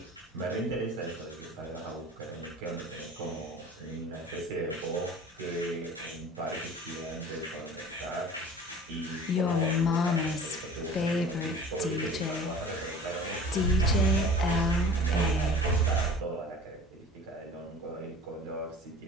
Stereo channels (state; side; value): normal; both; correlation 0.43